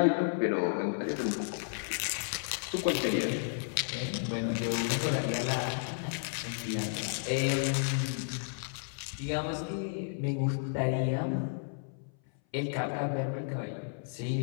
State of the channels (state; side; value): silent; right; 56 dB below the other